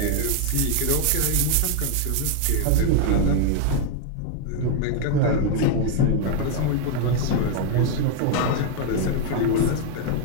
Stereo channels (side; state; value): both; different; correlation 0.00